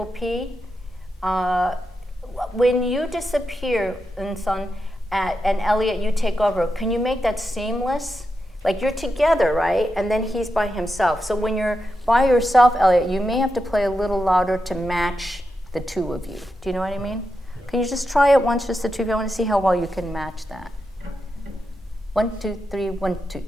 P? When you disappear, and Elliott, you take over, can you make that seamless? Like you're together, right? And then he's by himself. So when you're by yourself, Elliott, you may have to play a little louder to match the two of you. Do you know what I mean? Can you just try it once, just the two of you? I want to see how well you can match that. 1, 2, 3, 1, 2,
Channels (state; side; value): normal; both; correlation 0.87